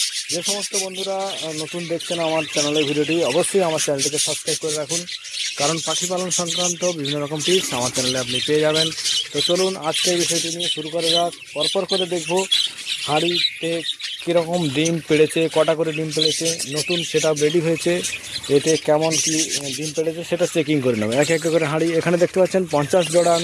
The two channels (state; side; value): identical; both; correlation 1.00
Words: যে সমস্ত বন্ধুরা নতুন দেখছেন আমার চ্যানেলের ভিডিওটি, অবশ্যই আমার চ্যানেলটিকে সাবস্ক্রাইব করে রাখুন, কারণ পাখি পালন সংক্রান্ত বিভিন্ন রকম টিপস আমার চ্যানেলে আপনি পেয়ে যাবেন। তো চলুন আজকে এই বিষয়টি নিয়ে শুরু করা যাক। পরপর করে দেখব হাঁড়িতে কীরকম ডিম পেড়েছে, কটা করে ডিম পেড়েছে, নতুন সেটআপ রেডি হয়েছে, এতে কেমন কি ডিম পেড়েছে সেটা চেকিং করে নেব এক এক করে হাঁড়ি। এখানে দেখতে পাচ্ছেন 50 জোড়া